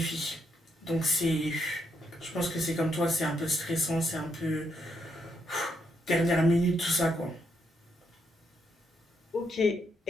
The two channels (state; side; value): normal; both; correlation 0.77